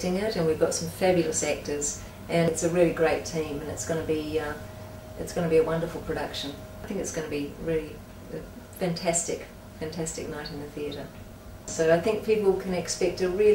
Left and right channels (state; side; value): identical; both; correlation 1.00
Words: it, and we've got some fabulous actors, and it's a really great team, and it's going to be a wonderful production. I think it's going to be really a fantastic night in the theatre. So I think people can expect a